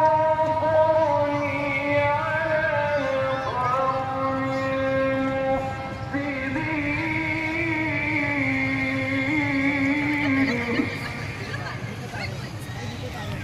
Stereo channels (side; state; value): both; identical; correlation 1.00